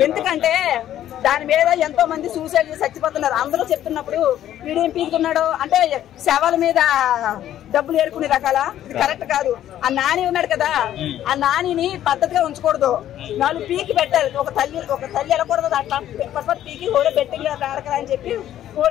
ఎందుకంటే దాని మీద ఎంతో మంది సూసైడ్ చేసి చచ్చిపోతున్నారు. అందరూ చెప్తున్నప్పుడు వీడేం పీకుతున్నాడు అంటే శవాల మీద డబ్బులు ఏరుకునే రకాల ఇది కరెక్ట్ కాదు. ఆ నాని ఉన్నాడు కదా, ఆ నానిని పద్ధతిగా ఉంచకూడదు. 4 పీకి పెట్టాలి. ఒక తల్లి వెళ్ళకూడదు అట్లా పీకి కూడా బెట్టింగ్ ఆడకరా అని చెప్పి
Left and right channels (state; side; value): quieter; right; 11.8 dB